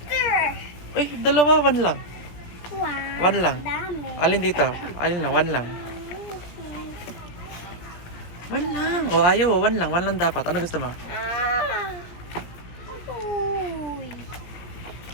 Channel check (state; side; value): late; right; 17 ms